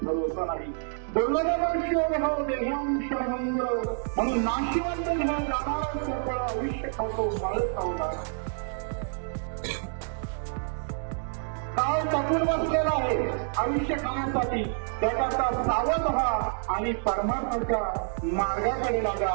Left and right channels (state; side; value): silent; left; digital silence